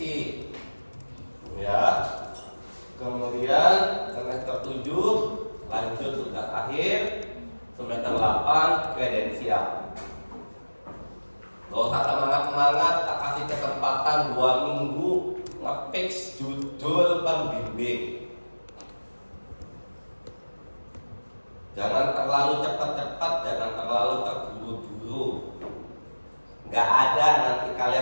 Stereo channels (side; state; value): both; inverted; correlation -1.00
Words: Ya. Kemudian semester 7 lanjut tugas akhir, semester 8 kredensial. Gak usah semangat-semangat, tak kasih kesempatan 2 minggu nge-fix judul pembimbing. Jangan terlalu cepat-cepat, jangan terlalu terburu-buru. Nggak ada nanti